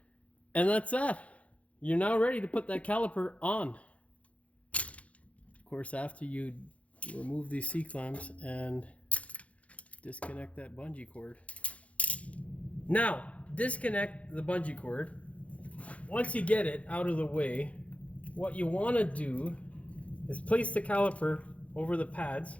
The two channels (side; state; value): right; late; 0.065 ms